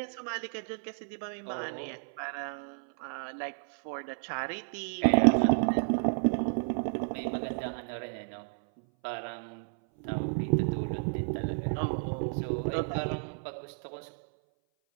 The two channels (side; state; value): left; silent; 57 dB below the other